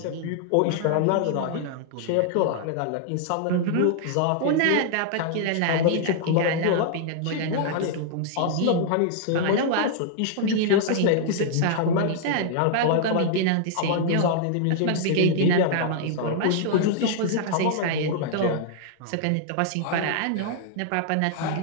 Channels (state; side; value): different; both; correlation -0.01